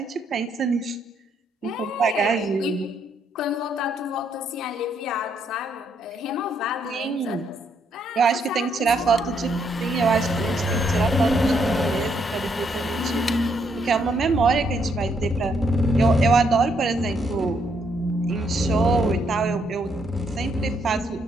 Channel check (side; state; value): both; normal; correlation 0.73